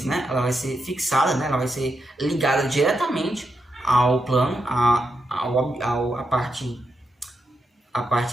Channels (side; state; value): both; normal; correlation 0.84